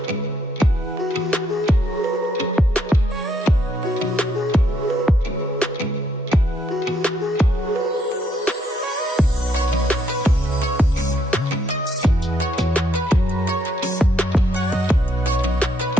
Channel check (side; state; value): both; normal; correlation 0.71